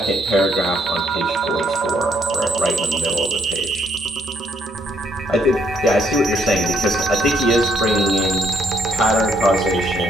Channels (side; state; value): both; normal; correlation 0.71